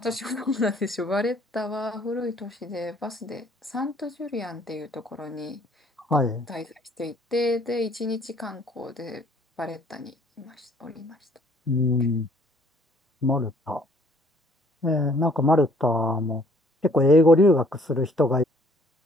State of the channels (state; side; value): normal; both; correlation 0.60